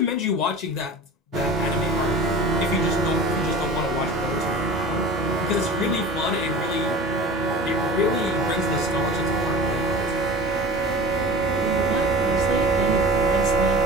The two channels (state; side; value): normal; both; correlation 0.37